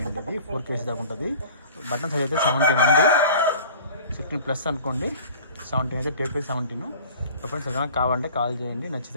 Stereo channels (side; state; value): both; inverted; correlation -0.44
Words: అండి. ఇది 4 kg దాకా ఉంటుంది. బటన్ సైజ్ అయితే 17 అండి. 16+ అనుకోండి. 17 అయితే టేప్ 17. ఫ్రెండ్స్ ఏదైనా కావాలంటే కాల్ చేయండి.